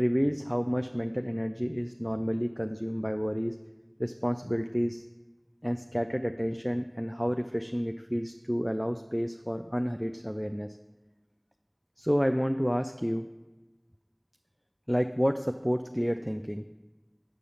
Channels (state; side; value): identical; both; correlation 1.00